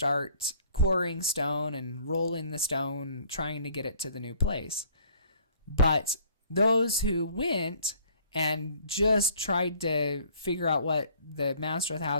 quarrying stone and rolling the stone, trying to get it to the new place. But those who went and just tried to figure out what the master of the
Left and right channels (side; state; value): both; inverted; correlation -0.55